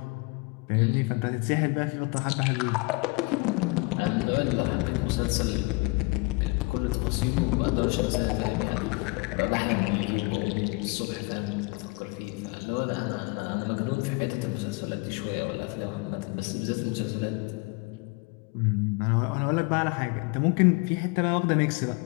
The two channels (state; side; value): quieter; right; 27.1 dB